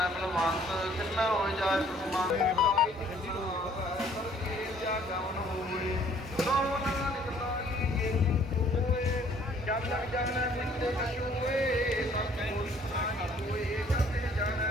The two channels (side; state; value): both; normal; correlation 0.59